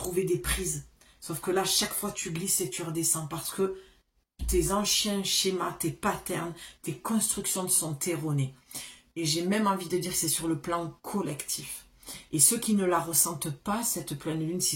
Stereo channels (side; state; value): both; identical; correlation 1.00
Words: des prises. Sauf que là, chaque fois tu glisses et tu redescends, parce que tes anciens schémas, tes patterns, tes constructions sont erronées. Et j'ai même envie de dire que c'est sur le plan collectif. Et ceux qui ne la ressentent pas, cette pleine lune,